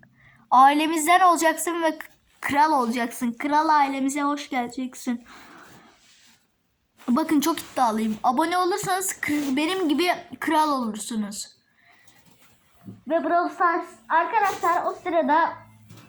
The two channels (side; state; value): both; identical; correlation 1.00